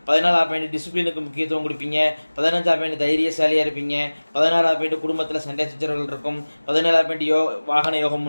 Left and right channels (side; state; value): both; inverted; correlation -1.00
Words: 14வது பாயிண்ட், டிசிப்ளினுக்கு முக்கியத்துவம் கொடுப்பீங்க. 15வது பாயிண்ட், தைரியசாலியாக இருப்பீங்க. 16வது பாயிண்ட், குடும்பத்தில் சண்டை சச்சரவுகள் இருக்கும். 17வது பாயிண்ட், வாகன யோகம்